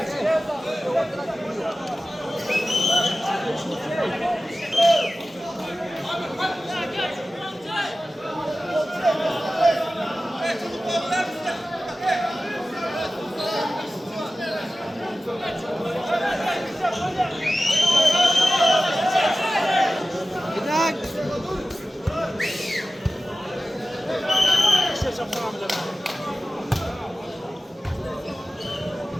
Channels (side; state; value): both; normal; correlation 0.95